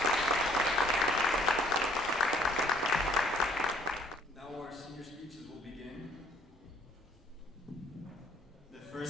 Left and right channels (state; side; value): normal; both; correlation 0.60